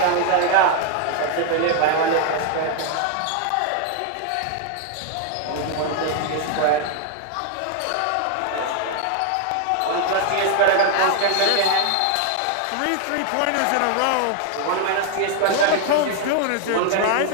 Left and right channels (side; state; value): both; different; correlation 0.00